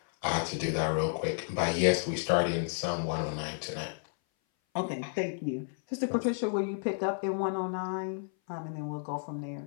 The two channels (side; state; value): right; silent; 57 dB below the other